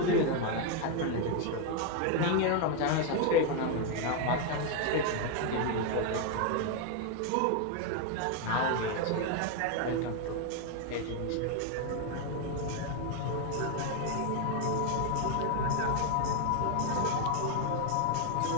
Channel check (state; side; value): different; both; correlation 0.01